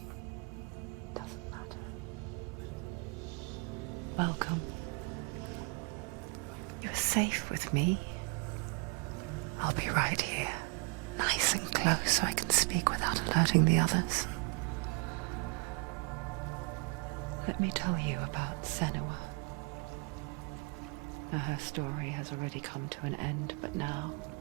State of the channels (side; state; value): left; quieter; 32.7 dB